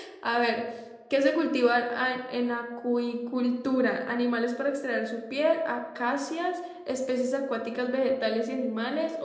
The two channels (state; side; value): identical; both; correlation 1.00